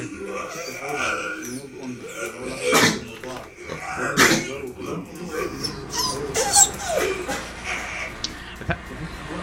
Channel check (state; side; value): identical; both; correlation 1.00